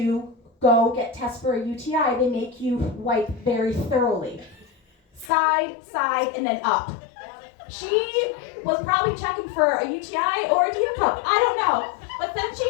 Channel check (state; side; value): drops out; right; at 5.3 s